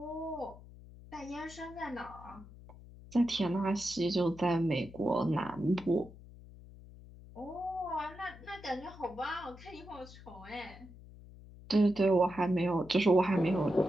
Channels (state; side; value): noise; left; hum, 18 dB below the sound